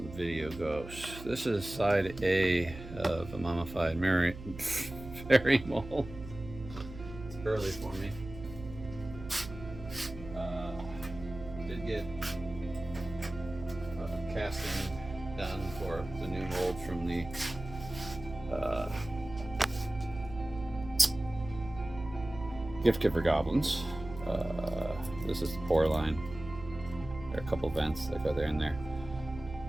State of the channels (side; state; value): right; noise; hum, 13 dB below the sound